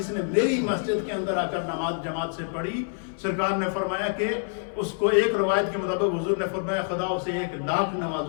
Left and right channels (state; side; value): silent; right; 61 dB below the other